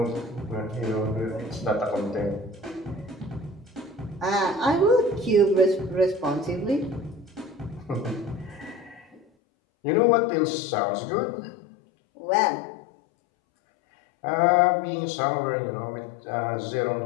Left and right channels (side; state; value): right; drops out; at 9.2 s